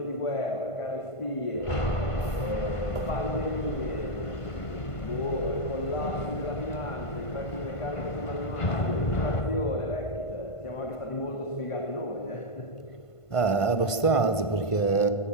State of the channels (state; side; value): late; right; 1.5 ms